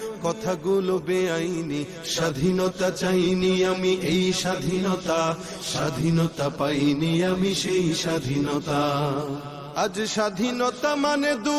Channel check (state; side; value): identical; both; correlation 1.00